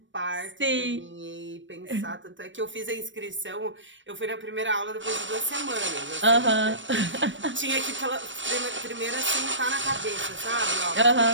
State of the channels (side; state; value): left; late; 0.55 ms